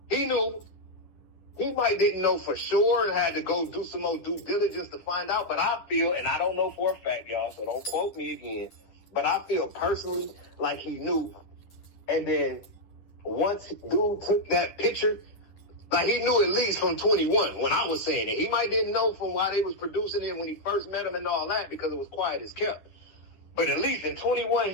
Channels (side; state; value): right; late; 10 ms